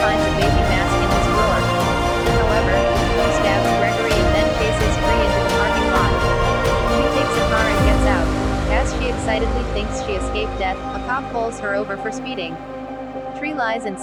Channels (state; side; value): identical; both; correlation 1.00